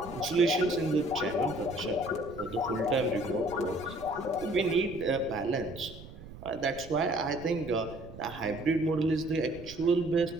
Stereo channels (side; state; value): right; noise; rumble, 15 dB below the sound